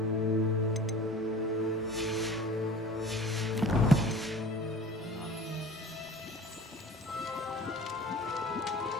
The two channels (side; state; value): both; normal; correlation 0.43